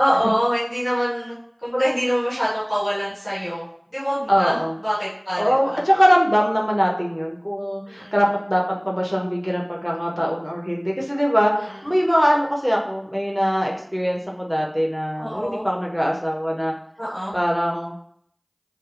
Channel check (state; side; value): identical; both; correlation 1.00